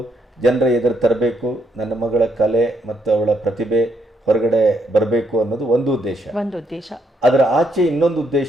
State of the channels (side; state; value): both; normal; correlation 0.74